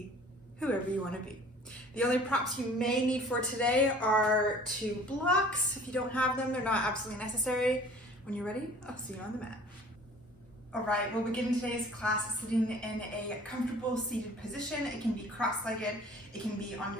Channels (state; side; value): normal; both; correlation 0.49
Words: whoever you want to be. The only props you may need for today are 2 blocks. If you don't have them, they're not absolutely necessary. When you're ready, I'll see you on the mat. All right, we'll begin today's class sitting in a comfortable seated position. It can be cross-legged, it can be on